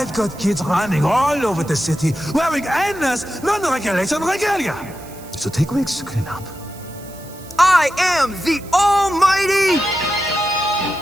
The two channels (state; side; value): noise; right; hiss, 20 dB below the sound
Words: got kids running all over the city wearing endless, non-regulation regalia. So take weeks to clean up. I am the Almighty!